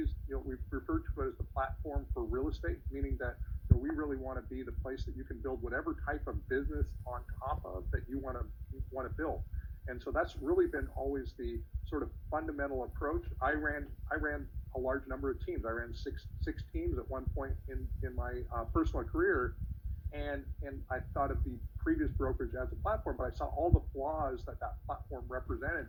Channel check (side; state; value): both; identical; correlation 1.00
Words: we refer to it as the platform for real estate, meaning that we really want to be the place that you can build whatever type of business on top of that you want to build. And so that's really been always the sort of fundamental approach. I ran a large number of teams. I ran six teams at one point in my personal career, and I thought of the previous brokerage as a platform, but I saw all the flaws that platform represented